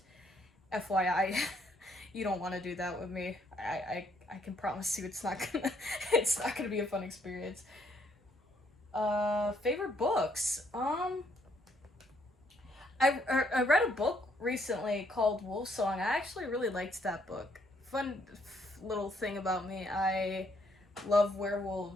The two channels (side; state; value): both; normal; correlation 0.69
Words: FYI, you don't want to do that with me. I can promise you it's not gonna be a fun experience. Favorite books? I read a book recently called Wolfsong. I actually really liked that book. Fun little thing about me, I love